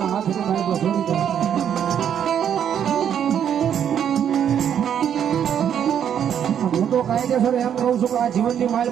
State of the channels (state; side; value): quieter; left; 9.0 dB